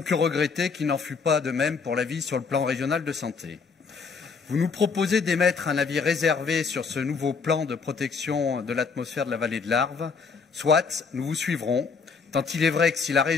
que regretter qu'il n'en fut pas de même pour l'avis sur le plan régional de santé. Vous nous proposez d'émettre un avis réservé sur ce nouveau plan de protection de l'atmosphère de la vallée de l'Arve. Soit, nous vous suivrons, tant il est vrai que si la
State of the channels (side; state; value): right; quieter; 5.2 dB